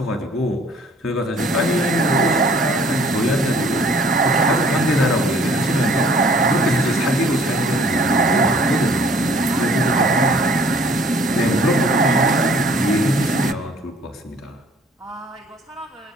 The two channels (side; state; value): both; normal; correlation 0.57